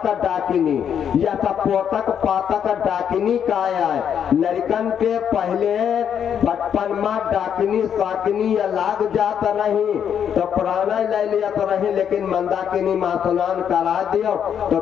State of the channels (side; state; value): right; quieter; 8.4 dB